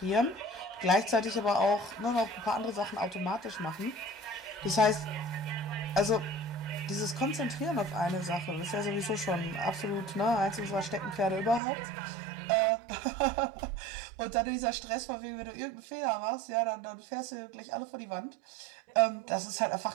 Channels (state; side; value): drops out; left; at 11.6 s